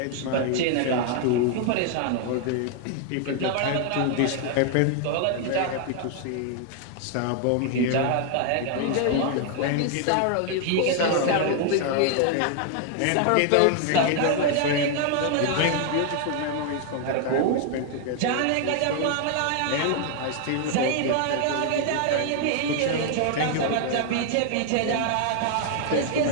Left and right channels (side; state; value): both; different; correlation 0.00